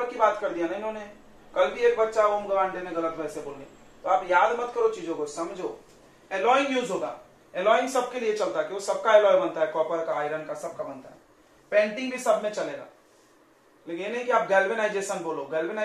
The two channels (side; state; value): both; identical; correlation 1.00